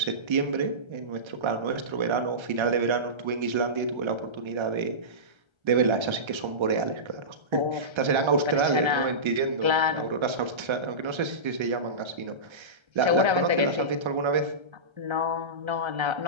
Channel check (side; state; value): left; late; 1.3 ms